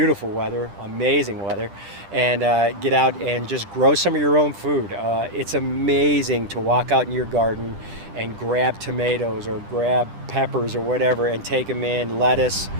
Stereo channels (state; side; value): late; left; 10 ms